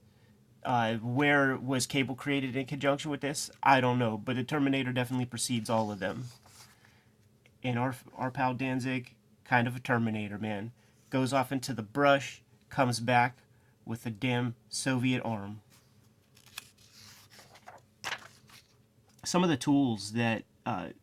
Where was Cable created in conjunction with this? I don't know, but the Terminator definitely precedes all of them. And our pal Danzig, kind of a Terminator, man. Goes off into the brush, comes back with a damn Soviet arm. Some of the tools that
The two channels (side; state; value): both; identical; correlation 1.00